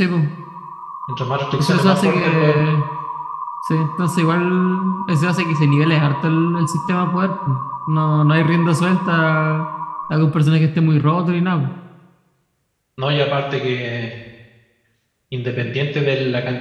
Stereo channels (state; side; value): identical; both; correlation 1.00